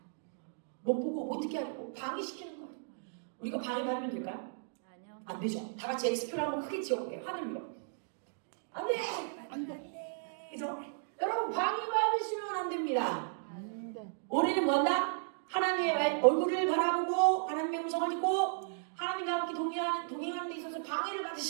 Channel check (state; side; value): silent; left; digital silence